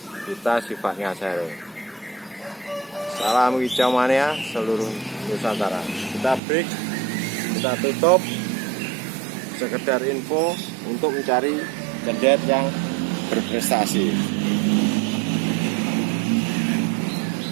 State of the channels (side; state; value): left; drops out; at 6.4 s